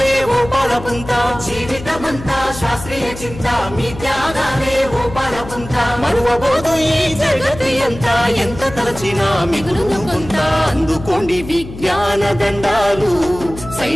ఓ పాలపుంత, జీవితమంతా శాస్త్రీయ చింత, మీ త్యాగాలే ఓ పాలపుంత. మరువబోదు ఈ జగతి అంతా, ఎంత తలచినా మిగులును కొంత. అందుకోండి విజ్ఞాన దండాలు,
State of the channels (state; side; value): noise; left; hum, 13 dB below the sound